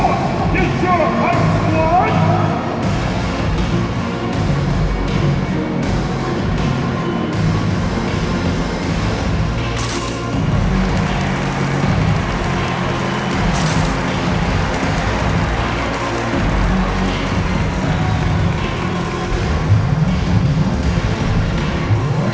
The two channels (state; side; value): identical; both; correlation 1.00